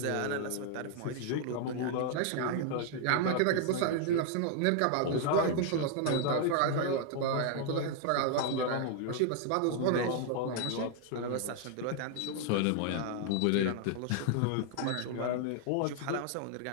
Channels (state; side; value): different; both; correlation 0.00